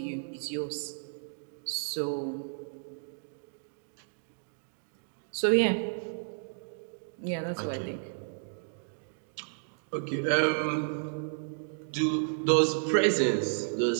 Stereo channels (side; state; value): left; silent; digital silence